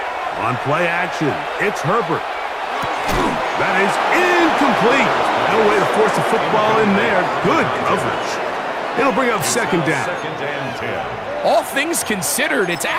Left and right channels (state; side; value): identical; both; correlation 1.00